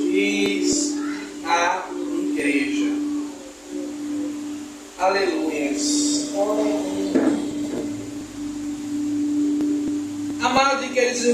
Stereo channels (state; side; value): identical; both; correlation 1.00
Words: diz à igreja. Aleluias. Amados e queridos